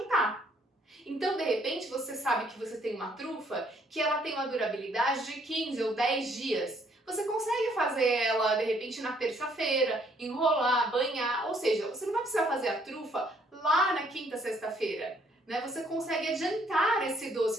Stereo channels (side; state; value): both; normal; correlation 0.66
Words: Então, de repente, você sabe que você tem uma trufa que ela tem uma durabilidade de 15 ou 10 dias. Você consegue fazer ela, de repente, na terça-feira, enrolar, banhar, ou seja, você não vai precisar fazer a trufa lá na quinta, sexta-feira, né? Você consegue adiantar esse